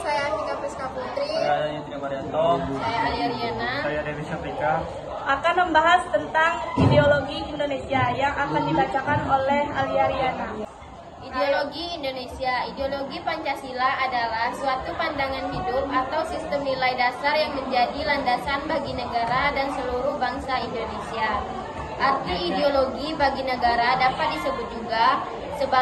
saya Antika Priska Putri, Saya Yudhya Marianto, saya Alia Riana. saya Dewi Syafrika. akan membahas tentang ideologi Indonesia yang akan dibacakan oleh Alia Riana. Ideologi Indonesia. Ideologi Pancasila adalah suatu pandangan hidup atau sistem nilai dasar yang menjadi landasan bagi negara dan seluruh bangsa Indonesia. Arti ideologi bagi negara dapat disebut juga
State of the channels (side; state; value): both; identical; correlation 1.00